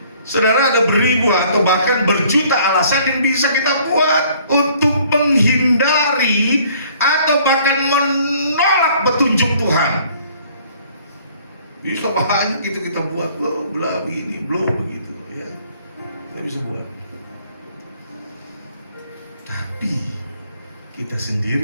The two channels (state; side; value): inverted; both; correlation -0.58